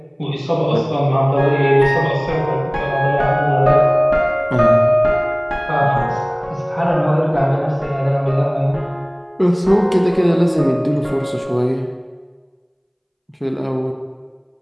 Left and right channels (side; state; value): both; identical; correlation 1.00